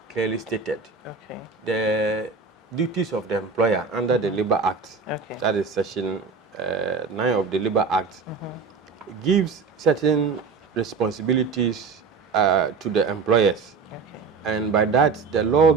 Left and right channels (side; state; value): left; quieter; 4.9 dB